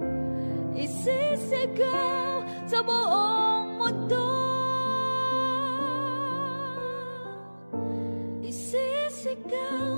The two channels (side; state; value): both; inverted; correlation -1.00